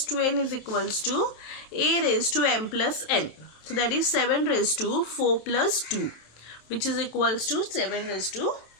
to N is equals to A raised to M plus N. So that is 7 raised to 4 plus 2, which is equals to 7 raised to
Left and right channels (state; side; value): late; right; 27 ms